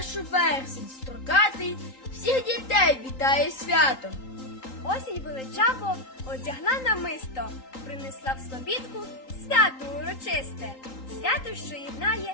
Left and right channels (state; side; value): late; right; 3.8 ms